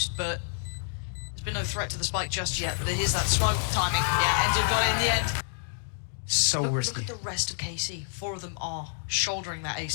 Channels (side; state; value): right; silent; digital silence